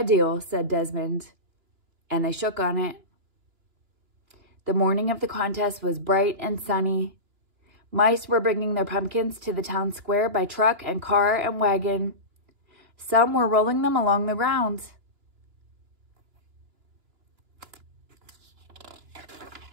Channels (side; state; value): left; late; 2.9 ms